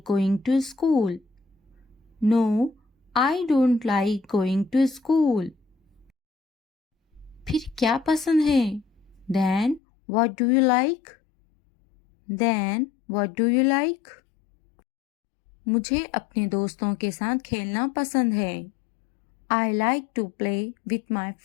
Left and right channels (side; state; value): right; drops out; at 9.8 s